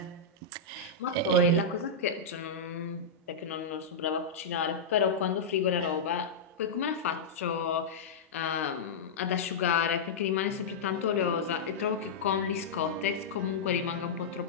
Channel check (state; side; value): quieter; right; 3.7 dB